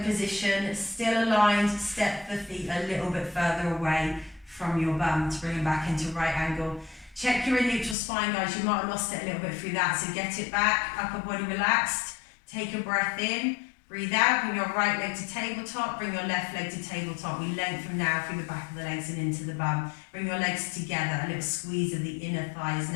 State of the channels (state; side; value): drops out; right; at 8.0 s